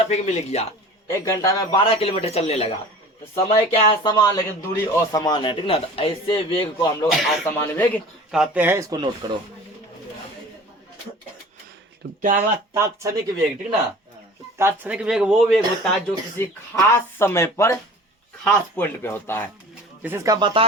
मिल गया, 1 घंटा में 12 किलोमीटर चलने लगा। तो समय क्या है, समान, लेकिन दूरी असमान है, ठीक ना। तो ऐसे वेग को हम लोग असमान वेग कहते हैं, इसको नोट करो। तो क्या हुआ, तात्क्षणिक वेग, ठीक ना। तो तात्क्षणिक वेग वो वेग होता है जो किसी खास समय पर खास पॉइंट पे होता है। जैसे इसका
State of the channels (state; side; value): normal; both; correlation 0.42